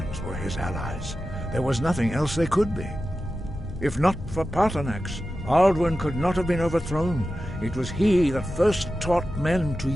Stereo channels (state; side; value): normal; both; correlation 0.93